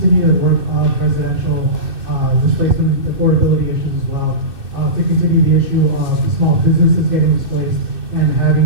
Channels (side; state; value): left; late; 2.6 ms